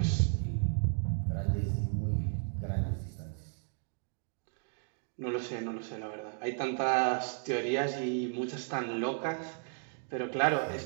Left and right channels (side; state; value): left; silent; 55 dB below the other